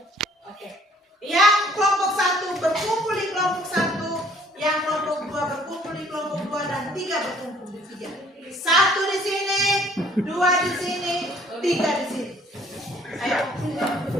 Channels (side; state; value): both; normal; correlation 0.58